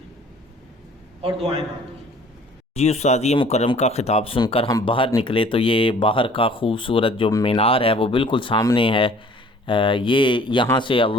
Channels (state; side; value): normal; both; correlation 0.52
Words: اور دعائیں مانگیں۔ جی استادی مکرم کا خطاب سن کر ہم باہر نکلے تو یہ باہر کا خوبصورت جو مینار ہے وہ بالکل سامنے ہے۔ یہ یہاں سے